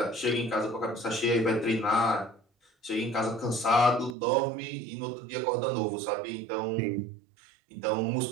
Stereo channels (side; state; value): left; drops out; at 4.2 s